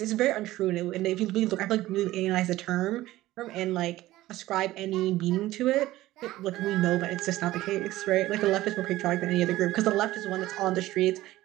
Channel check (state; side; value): quieter; left; 16.4 dB